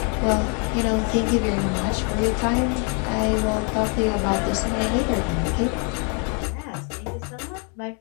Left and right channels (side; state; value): right; quieter; 37.7 dB